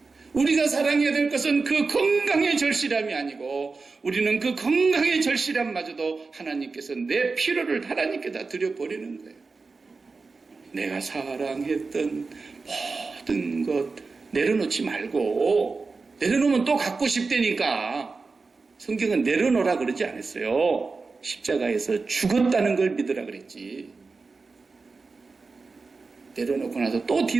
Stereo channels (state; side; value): quieter; left; 4.2 dB